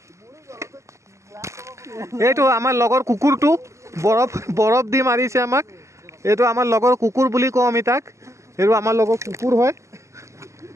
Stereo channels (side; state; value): left; late; 0.14 ms